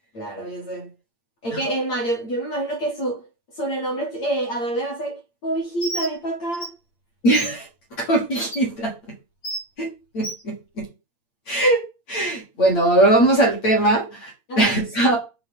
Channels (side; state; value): right; late; 8.7 ms